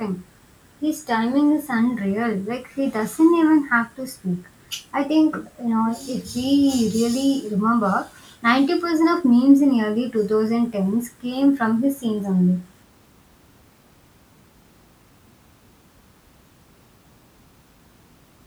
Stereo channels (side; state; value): both; identical; correlation 1.00